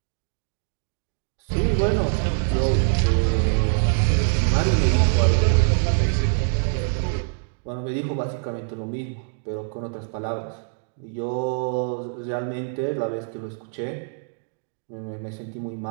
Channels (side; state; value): left; silent; digital silence